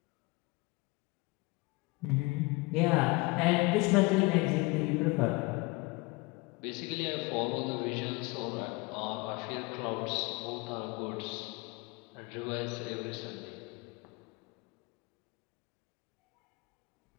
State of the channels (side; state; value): right; quieter; 25.5 dB